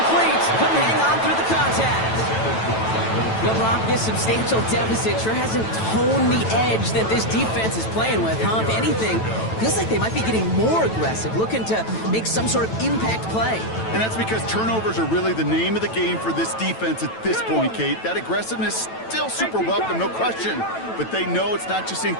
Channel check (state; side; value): late; right; 9.1 ms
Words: Couldn't hang on through the contact. LeBron, this substantial deficit sure hasn't toned the edge that this defense is playing with, huh? If anything, feels like they might be getting more aggressive, looking to make some sort of impact play. And that's because turnovers are really the name of the game for this defense at this point, Kate. That aggressiveness still super welcome, no question. But they know it's not just